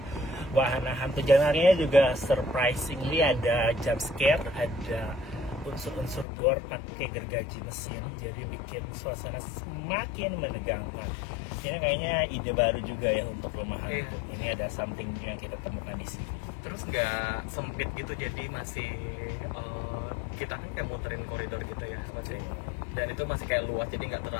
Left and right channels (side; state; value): right; drops out; at 6.2 s